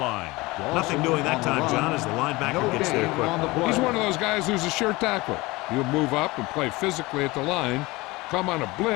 Nothing doing that time, John, as the linebacker gets there quick. He's one of those guys who's a sure tackler. He'll move up and play physically at the line, come on a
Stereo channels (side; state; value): right; quieter; 22.0 dB